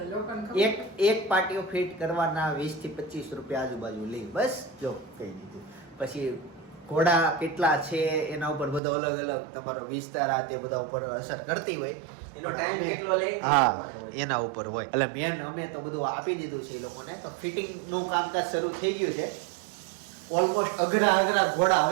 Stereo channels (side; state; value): left; drops out; at 8.8 s